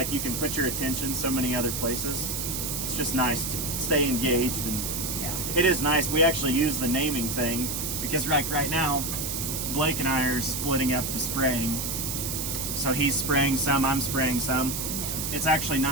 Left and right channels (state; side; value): noise; right; hiss, 3 dB below the sound